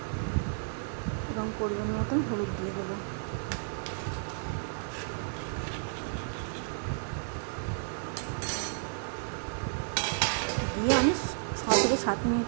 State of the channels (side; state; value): left; silent; digital silence